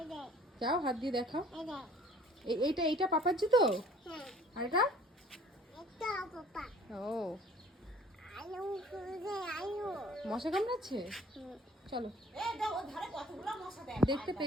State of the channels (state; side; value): normal; both; correlation 0.53